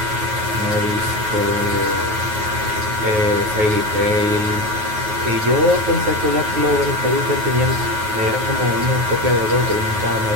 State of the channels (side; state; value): left; late; 9.4 ms